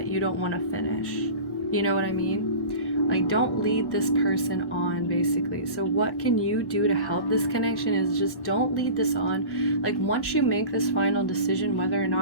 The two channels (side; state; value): right; late; 1.1 ms